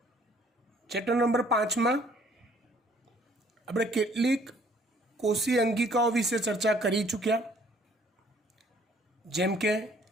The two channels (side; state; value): both; normal; correlation 0.59